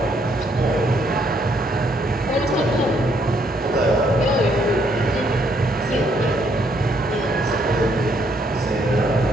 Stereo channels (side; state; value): both; normal; correlation 0.70